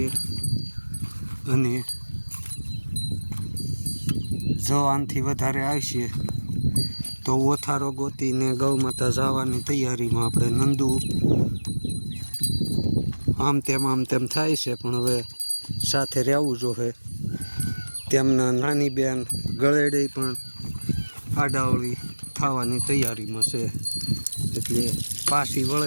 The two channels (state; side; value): inverted; both; correlation -1.00